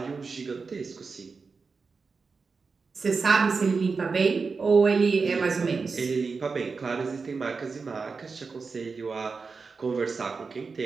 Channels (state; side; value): quieter; left; 4.7 dB